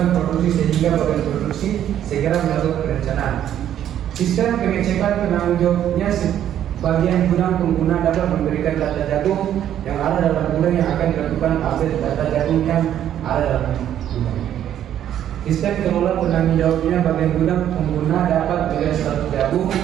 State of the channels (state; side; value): quieter; left; 10.7 dB